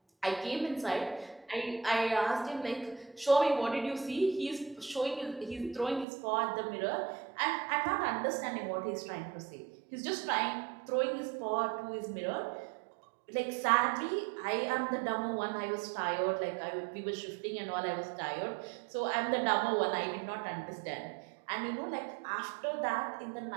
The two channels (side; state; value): left; drops out; at 6.1 s